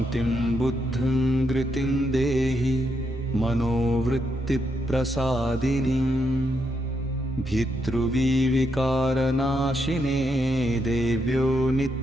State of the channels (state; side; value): normal; both; correlation 0.80